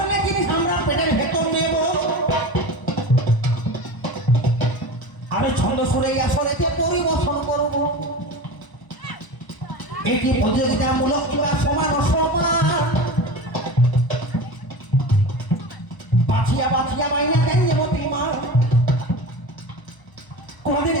জিনিস আমরা পেটের ভেতর নেব আমি ছন্দ শুনে আসলেতে পরিবর্তন করব এটি প্রতিযোগিতামূলক কিংবা সমান অসমান বাছিয়া বাছিয়া মাইনা দেন মতি মা কোনদিন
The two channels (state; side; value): late; right; 1.0 ms